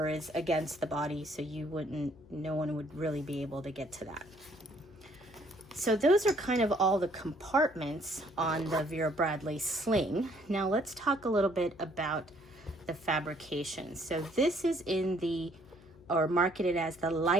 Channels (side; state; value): left; noise; hum, 23 dB below the sound